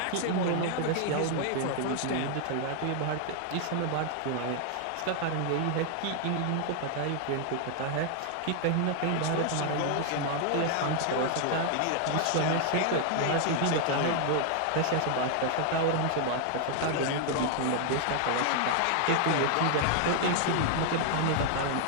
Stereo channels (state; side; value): different; both; correlation 0.00